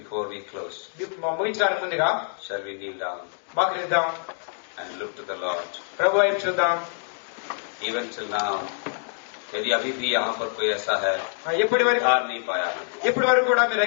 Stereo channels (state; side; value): silent; right; digital silence